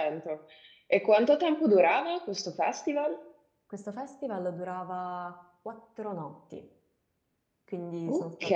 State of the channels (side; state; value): both; identical; correlation 1.00